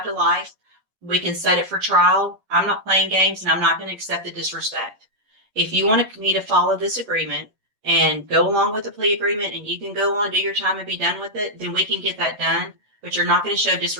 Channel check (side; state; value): left; late; 9.4 ms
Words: to life. We can set it for trial. I'm not playing games, and I'm not going to accept the disrespect. If you want me to follow this agreement and go along with the plea agreement and you can go on, do your time, and be done with it, then we can get that done. But you're not going to show